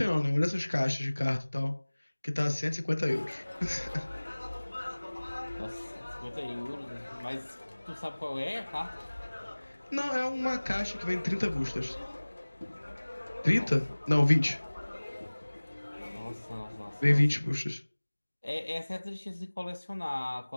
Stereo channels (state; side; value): inverted; both; correlation -1.00